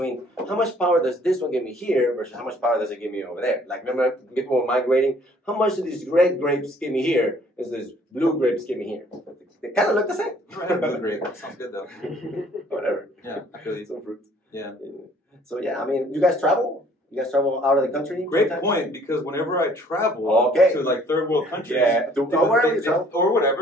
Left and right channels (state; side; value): normal; both; correlation 0.58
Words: how much power does this one give me here versus how much power does it give me over there. Like remember people were migrating, how much do these red grapes give me here is this blue grapes give me here. They kind of look the same. Blue grape. That sounds good though. Whatever. Yeah, I feel you. Some fruits. Yeah. So yeah, I mean, you guys travel? You guys travel out of the country? Great point, because whenever I travel to like third world countries, or